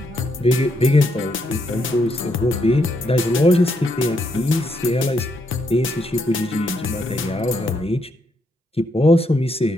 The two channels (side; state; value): both; normal; correlation 0.77